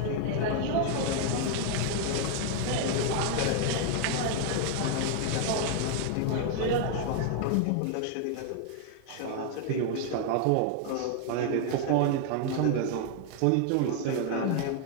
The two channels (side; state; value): both; different; correlation 0.00